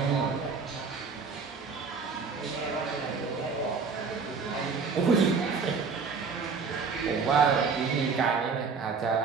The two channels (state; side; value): quieter; left; 5.1 dB